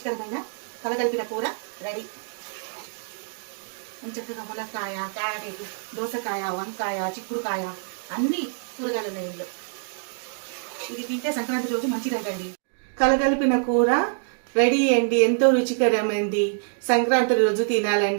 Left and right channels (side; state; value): left; silent; digital silence